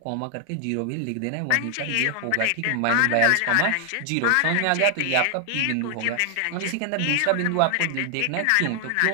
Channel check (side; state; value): both; different; correlation 0.00